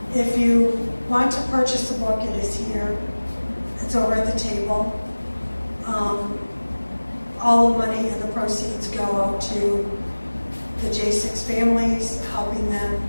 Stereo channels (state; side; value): inverted; both; correlation -1.00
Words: if you want to purchase the book, it is here. It's over at the table. All the money and the proceeds go out to the J6 families, helping them